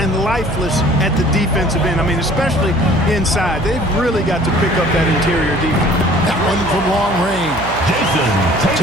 lifeless at the defensive end. I mean, especially inside. They've really got to pick up that interior defense. That one from long range.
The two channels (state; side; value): noise; right; hum, 10 dB below the sound